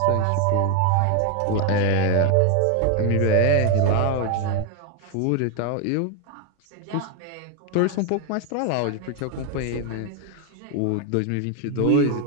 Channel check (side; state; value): both; different; correlation 0.01